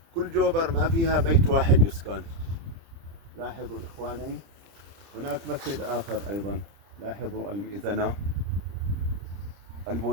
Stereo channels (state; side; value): late; left; 30 ms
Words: كل جوبر ما فيها بيت واحد يسكن. لاحظوا إخواني، هناك مسجد آخر أيضا، لاحظوا المئذنة،